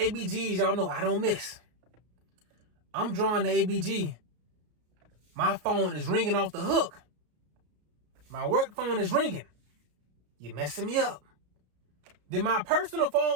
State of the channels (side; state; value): left; late; 33 ms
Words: Y'all know I don't miss. I'm drawing the ABG. My phone is ringing off the hook. My work phone is ringing. You messing me up. Then my personal phone